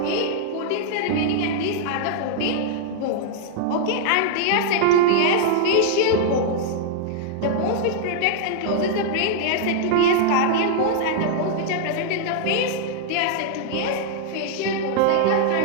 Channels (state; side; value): different; both; correlation -0.01